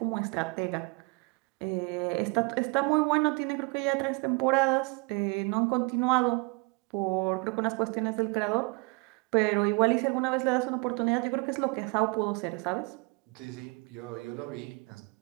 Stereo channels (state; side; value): quieter; left; 29.0 dB